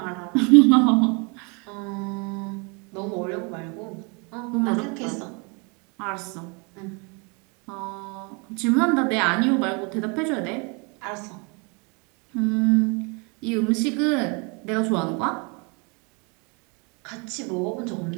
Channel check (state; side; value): quieter; left; 32.3 dB